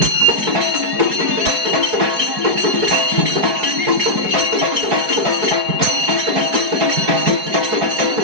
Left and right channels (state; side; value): late; left; 4.7 ms